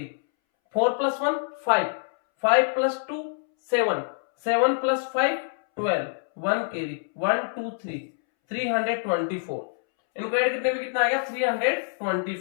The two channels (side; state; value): right; silent; 61 dB below the other